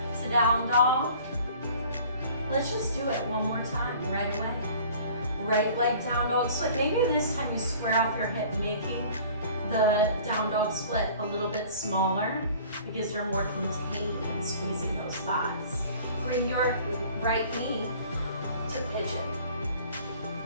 down dog. Let's just do it one more time right away. Right leg down dog split. Maybe this time you square off your hip, making the down dog split a little bit smaller because you're more contained in squeezing those thighs. Bring your right knee to pigeon.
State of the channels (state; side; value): inverted; both; correlation -0.48